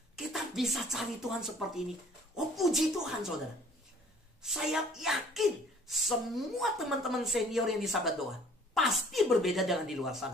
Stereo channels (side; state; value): both; normal; correlation 0.54